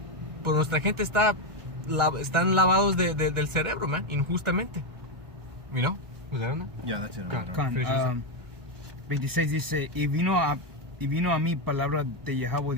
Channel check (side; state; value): left; late; 1.4 ms